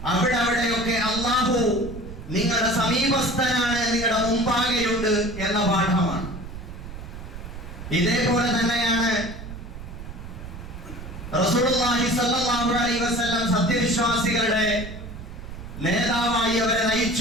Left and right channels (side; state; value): right; noise; rumble, 11 dB below the sound